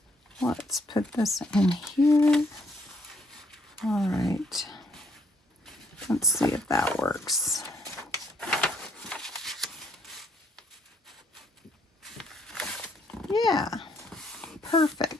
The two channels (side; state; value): both; normal; correlation 0.69